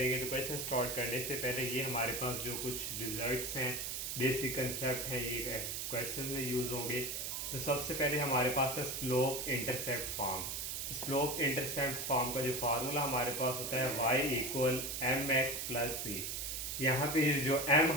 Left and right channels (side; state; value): right; noise; hiss, 3 dB below the sound